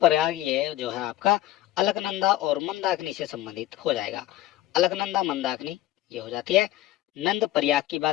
ये जो है आपका अलकनंदा और मंदाकिनी से संबंधित हो जाएगा। अलकनंदा मंदाकिनी ये हो जाती है। नंद प्रयाग की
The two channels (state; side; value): quieter; right; 14.6 dB